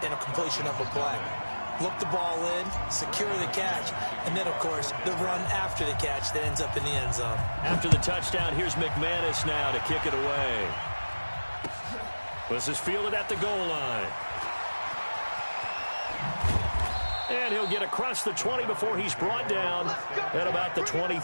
and a completion of a play? Look the ball in, secure the catch, and then, of course, the run after the catch that ends up in the end zone. After the touchdown, here's McManus now to kick it away. This is fielded at the goal line. And he'll get across the 20 before he's brought down at about the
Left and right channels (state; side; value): inverted; both; correlation -1.00